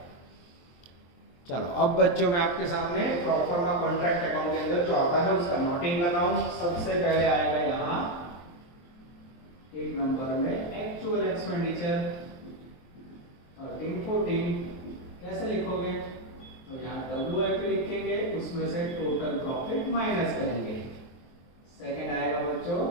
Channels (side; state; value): right; late; 23 ms